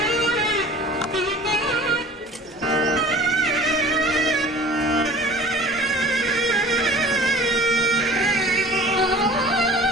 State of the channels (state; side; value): normal; both; correlation 0.44